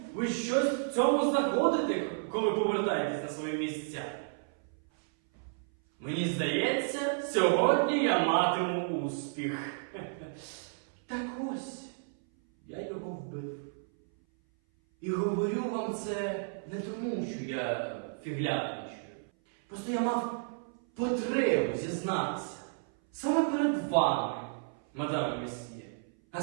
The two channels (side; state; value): left; silent; 56 dB below the other